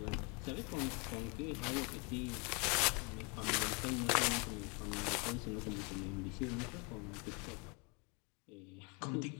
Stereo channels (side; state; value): right; quieter; 31.3 dB